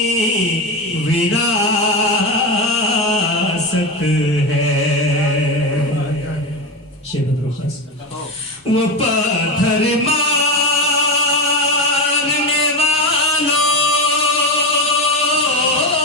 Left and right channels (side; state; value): both; normal; correlation 0.18